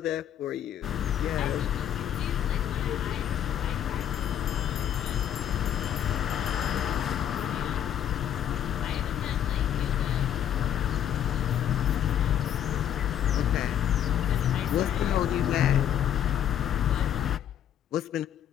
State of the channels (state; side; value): quieter; right; 10.0 dB